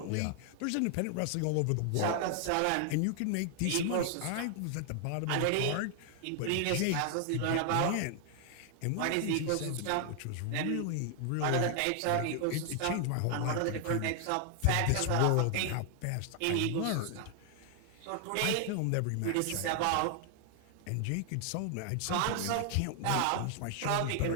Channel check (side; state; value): both; different; correlation 0.00